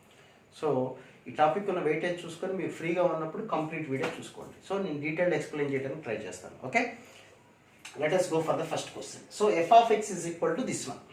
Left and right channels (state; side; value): identical; both; correlation 1.00